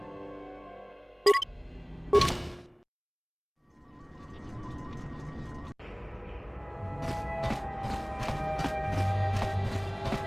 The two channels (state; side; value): identical; both; correlation 1.00